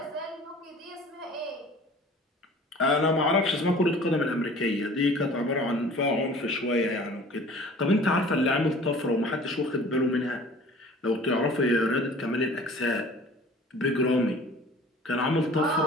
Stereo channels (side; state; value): both; normal; correlation 0.47